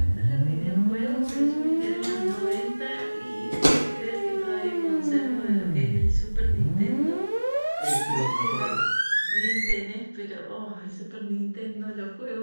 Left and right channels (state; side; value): inverted; both; correlation -1.00